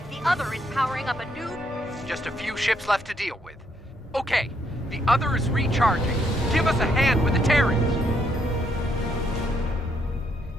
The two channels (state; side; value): normal; both; correlation 0.73